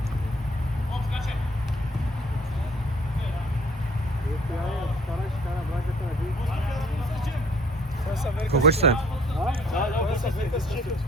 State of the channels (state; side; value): normal; both; correlation 0.58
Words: Колко ще се?